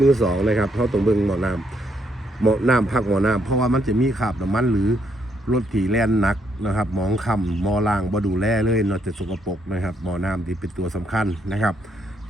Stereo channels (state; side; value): normal; both; correlation 0.74